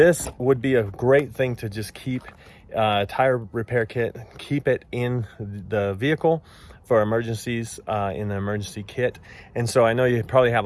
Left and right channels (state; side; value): identical; both; correlation 1.00